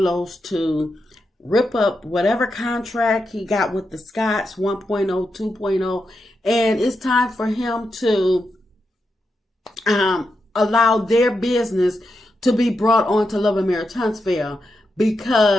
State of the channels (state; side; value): normal; both; correlation 0.86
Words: to rip up whatever contract he got with the Scotts 1.0, 2.0, and it's time for him to allow their business to be brought on to Love and Marriage Huntsville,